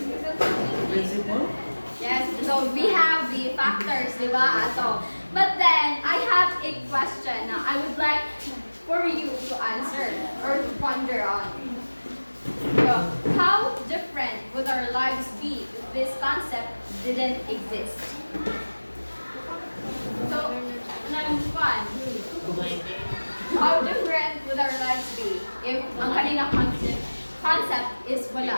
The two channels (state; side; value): inverted; both; correlation -1.00